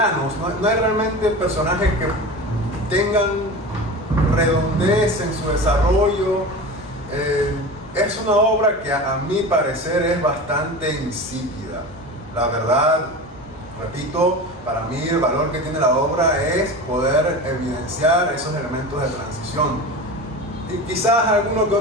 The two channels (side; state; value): both; normal; correlation 0.31